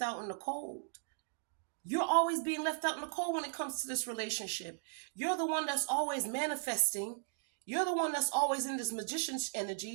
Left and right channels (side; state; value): left; silent; digital silence